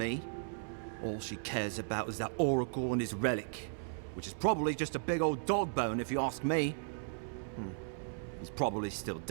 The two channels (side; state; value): left; silent; 54 dB below the other